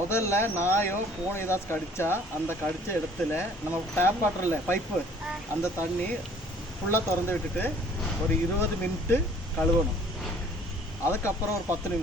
நாயோ பூனை ஏதாச்சும் கடித்தா அந்த கடித்த இடத்துல நம்ம டேப் வாட்டரில் பைப்பு அந்த தண்ணி ஃபுல்லாக திறந்து விட்டுட்டு ஒரு 20 மினிட்டு கழுவணும். அதுக்கப்புறம் ஒரு 10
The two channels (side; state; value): both; normal; correlation 0.55